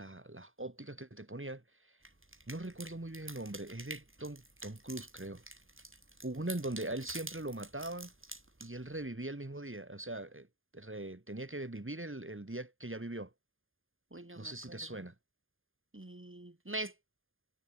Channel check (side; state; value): left; late; 0.59 ms